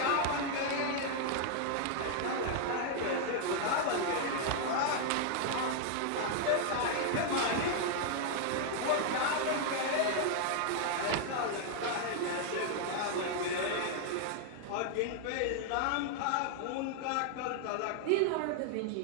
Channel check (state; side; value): different; both; correlation 0.00